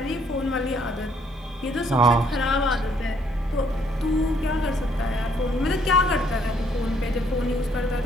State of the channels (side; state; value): both; normal; correlation 0.67